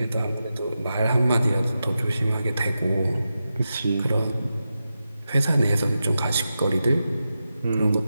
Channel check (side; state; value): both; inverted; correlation -0.90